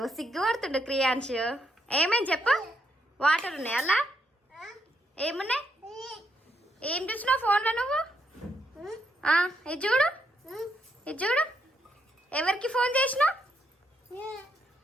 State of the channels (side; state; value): both; normal; correlation 0.77